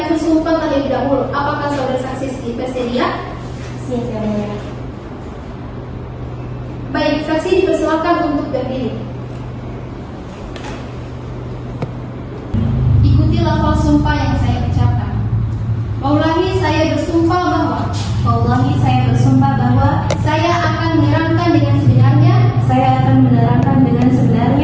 sumpah terlebih dahulu. Apakah saudara saksi bersedia? Siap Yang Mulia. Baik, saksi dipersilakan untuk berdiri. Ikuti lafal sumpah yang saya ucapkan. Wallahi, saya bersumpah bahwa Wallahi, saya bersumpah bahwa saya akan menerangkan dengan sebenarnya saya akan menerangkan dengan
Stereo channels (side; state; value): both; identical; correlation 1.00